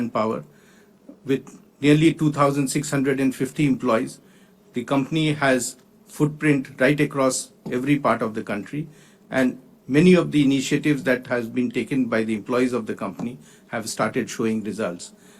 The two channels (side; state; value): both; identical; correlation 1.00